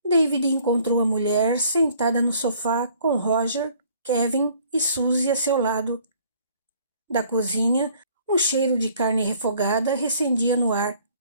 David encontrou a mulher sentada no sofá com Roger, Kevin e Suzy a seu lado. Da cozinha, um cheiro de carne refogada recendia no ar,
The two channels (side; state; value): both; inverted; correlation -0.58